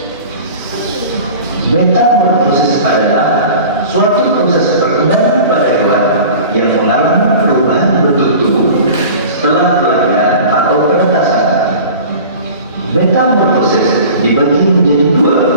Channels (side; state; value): both; inverted; correlation -0.40